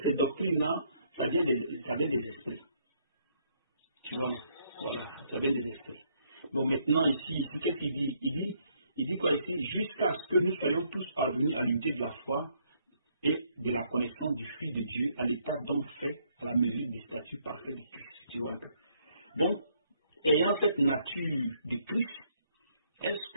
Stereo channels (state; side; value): inverted; both; correlation -0.70